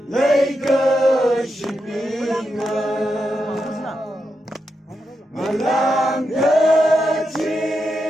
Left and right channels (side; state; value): both; normal; correlation 0.86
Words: 那个是平安，满浪的情